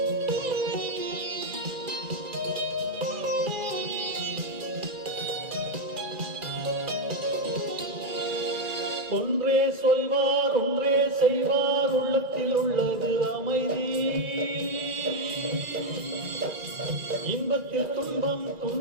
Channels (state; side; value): late; left; 1.9 ms